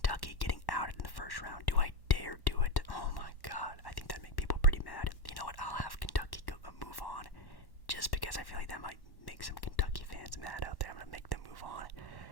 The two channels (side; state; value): right; late; 1.1 ms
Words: getting outed in the first round. Do I dare do it? Oh my god, I think that'd make people pretty mad. You know what, I'll have Kentucky move on, just because I feel like that might make some Kentucky fans mad out there. I'm going to make them move on.